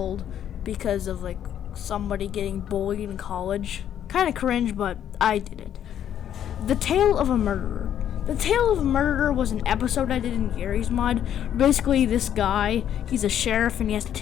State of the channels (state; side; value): quieter; right; 10.1 dB